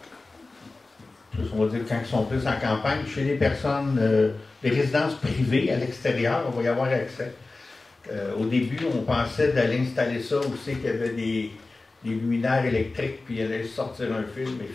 on va dire quand ils sont plus en campagne, chez les personnes, les résidences privées à l'extérieur, on va y avoir accès. Au début, on pensait d'aller installer ça où c'est qu'il y avait des luminaires électriques, puis il allait sortir un fil, mais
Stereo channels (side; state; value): right; quieter; 3.4 dB